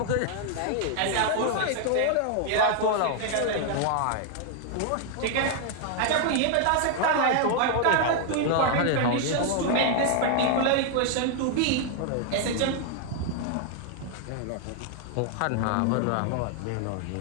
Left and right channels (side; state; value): both; different; correlation 0.00